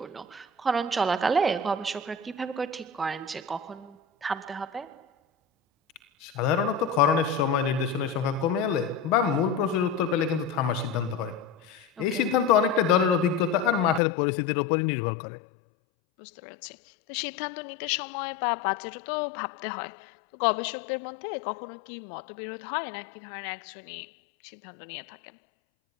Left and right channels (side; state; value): right; drops out; at 14.0 s